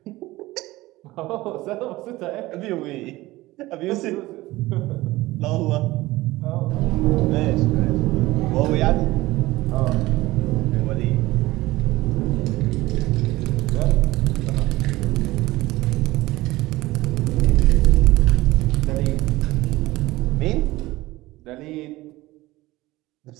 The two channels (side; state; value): left; quieter; 18.7 dB